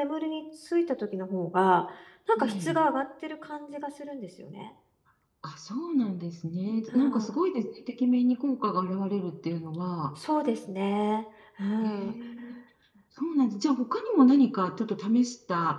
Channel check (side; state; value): both; identical; correlation 1.00